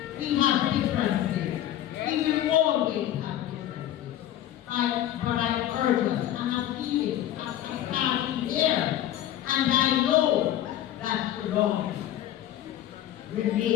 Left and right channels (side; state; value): right; quieter; 12.3 dB